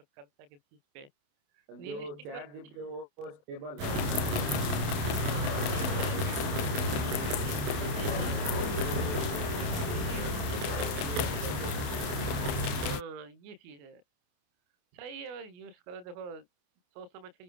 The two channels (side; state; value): left; late; 28 ms